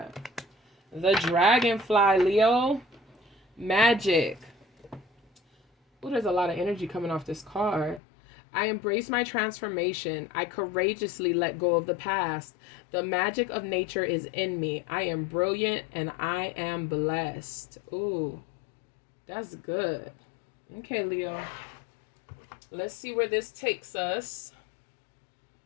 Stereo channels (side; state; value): right; drops out; at 8.0 s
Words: The Dragonfly, Leo. Magic. Oh, there's a lot of energy coming off this card. I embrace my transformation. I courageously let go of the past. The magic of nature is in me. I am brilliant and I am blessed. Ooh, that's good. Okay, Leo. Let's see where this takes us.